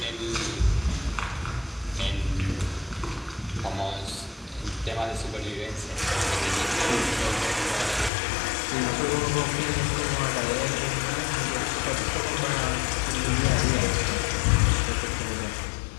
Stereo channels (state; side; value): drops out; right; at 8.1 s